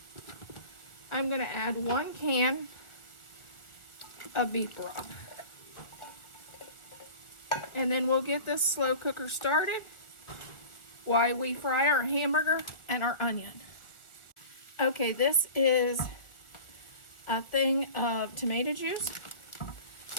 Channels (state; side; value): late; right; 1.4 ms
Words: I'm going to add 1 can of beef broth. And then we'll get this slow cooker started while we fry our hamburger and our onion. Okay, this is a thing of tomato juice.